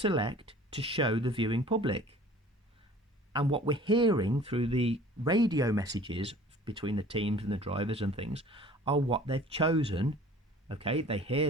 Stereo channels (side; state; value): both; normal; correlation 0.48